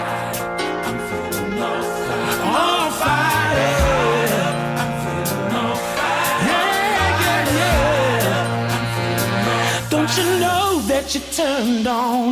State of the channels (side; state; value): both; identical; correlation 1.00